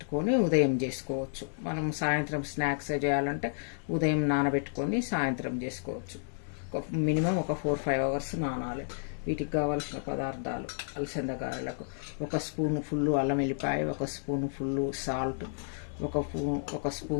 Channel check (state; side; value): silent; right; digital silence